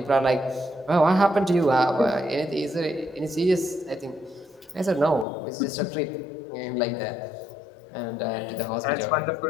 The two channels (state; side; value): drops out; right; at 5.2 s